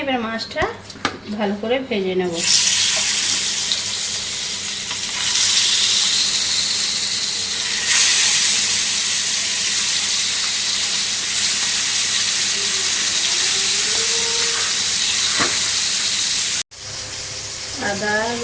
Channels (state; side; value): identical; both; correlation 1.00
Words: এবার মাছটা ভালো করে ভেজে নেব। আদা